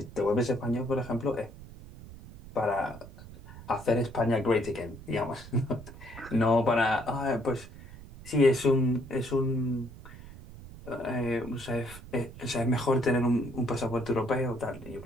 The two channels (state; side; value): noise; right; rumble, 16 dB below the sound